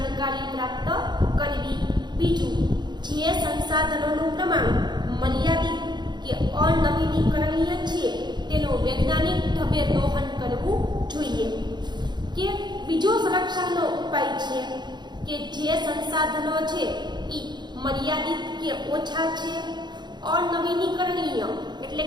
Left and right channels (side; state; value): left; late; 0.21 ms